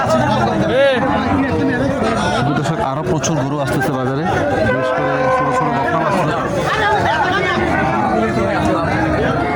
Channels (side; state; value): both; identical; correlation 1.00